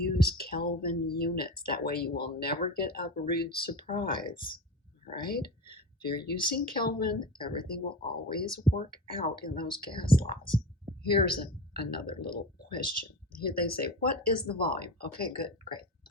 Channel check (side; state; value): both; normal; correlation 0.28